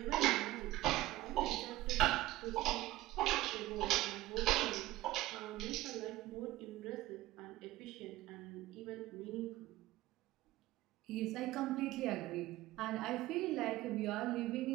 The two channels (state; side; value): quieter; left; 17.2 dB